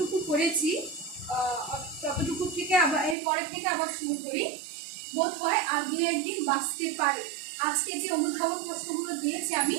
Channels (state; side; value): drops out; left; at 3.2 s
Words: করেছি ততটুকু থেকে আবার এরপরের থেকে আবার শুরু করি। বোধ হয় আর 2-1 দিন বাঁচতে পারে। আজকে যে অনুধাবন প্রশ্নগুলো দিয়েছি আমি,